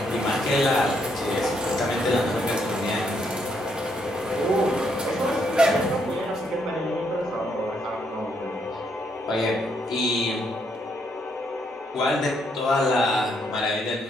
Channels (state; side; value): normal; both; correlation 0.74